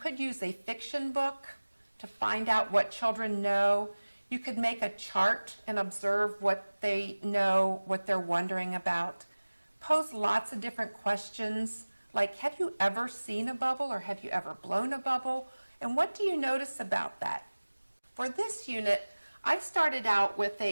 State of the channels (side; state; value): both; inverted; correlation -1.00